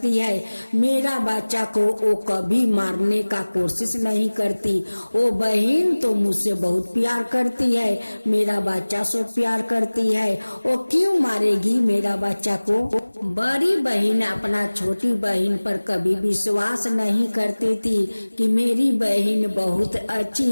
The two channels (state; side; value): inverted; both; correlation -1.00